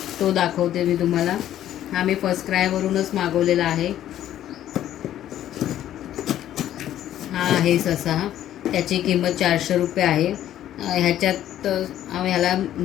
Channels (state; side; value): quieter; right; 12.0 dB